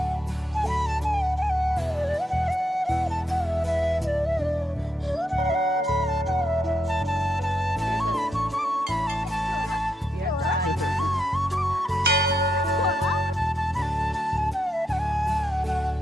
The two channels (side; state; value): both; normal; correlation 0.80